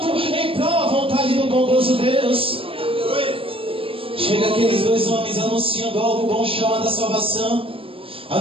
em prol da vontade do bondoso Deus. Chega aqueles dois homens anunciando algo bom chamado a salvação,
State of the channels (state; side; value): late; left; 0.26 ms